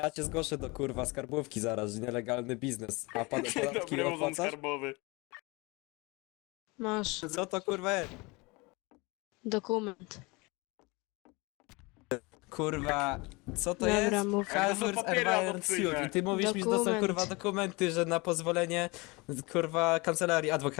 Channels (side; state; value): right; quieter; 25.8 dB